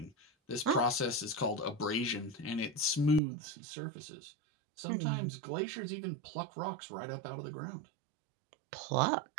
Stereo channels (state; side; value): drops out; left; at 3.2 s